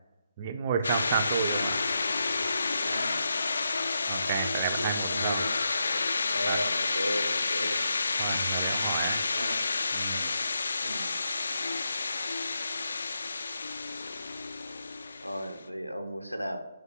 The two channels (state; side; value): inverted; both; correlation -0.83